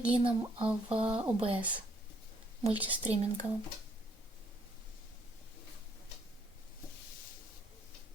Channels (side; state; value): both; normal; correlation 0.68